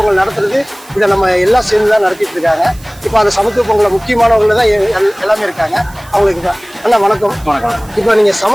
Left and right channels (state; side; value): noise; right; hiss, 23 dB below the sound